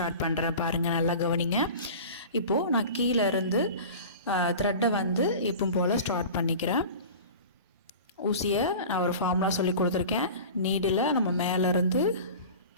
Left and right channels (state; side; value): inverted; both; correlation -0.36